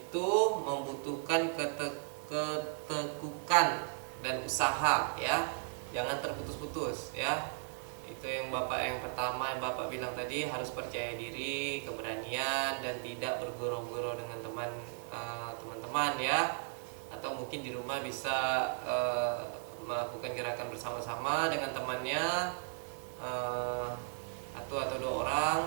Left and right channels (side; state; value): left; silent; 54 dB below the other